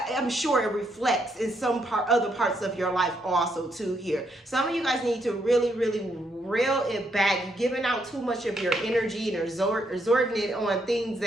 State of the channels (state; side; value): normal; both; correlation 0.76